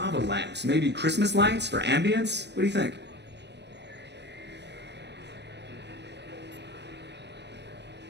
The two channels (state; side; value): late; left; 0.50 ms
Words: lamps, maybe Christmas lights for ambience. What do you think?